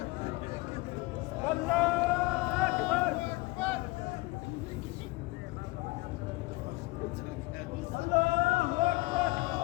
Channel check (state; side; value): quieter; right; 22.5 dB